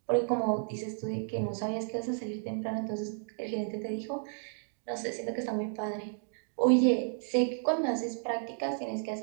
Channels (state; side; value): silent; left; digital silence